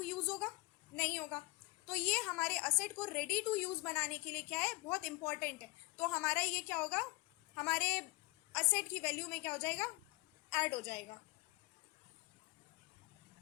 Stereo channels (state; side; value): quieter; right; 24.1 dB